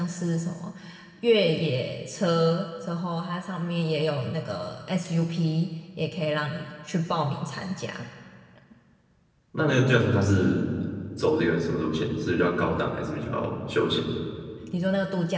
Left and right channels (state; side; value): identical; both; correlation 1.00